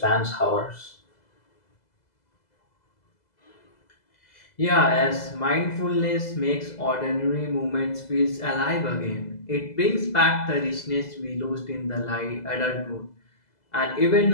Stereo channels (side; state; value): right; late; 2.0 ms